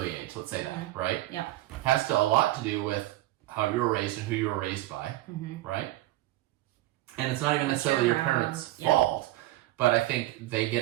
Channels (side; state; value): left; quieter; 16.5 dB